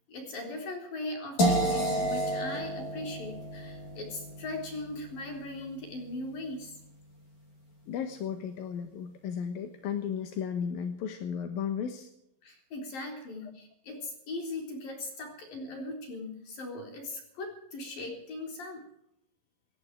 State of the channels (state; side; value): late; right; 11 ms